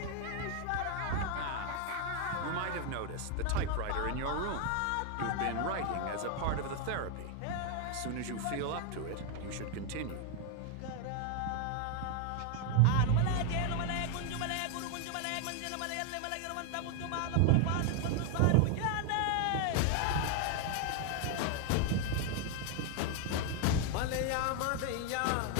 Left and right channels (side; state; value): both; different; correlation 0.00